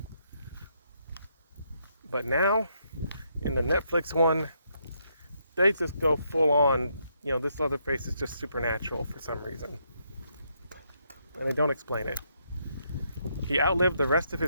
But now, in the Netflix one, they just go full on, this Leatherface is just supernatural for some reason. And they don't explain it. He outlived the rest of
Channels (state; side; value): inverted; both; correlation -0.76